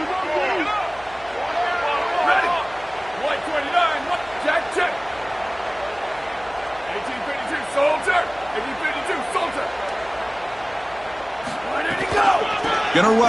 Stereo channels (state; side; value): noise; left; hum, 23 dB below the sound